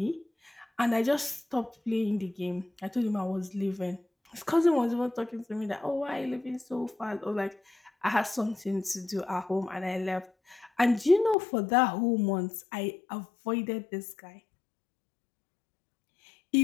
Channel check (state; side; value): drops out; right; at 11.4 s